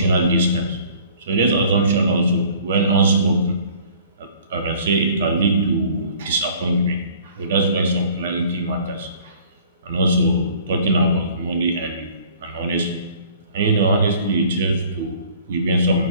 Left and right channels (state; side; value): inverted; both; correlation -0.53